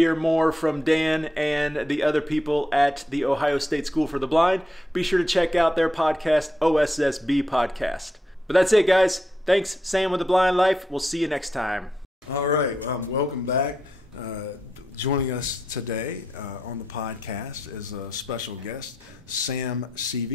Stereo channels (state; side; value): normal; both; correlation 0.82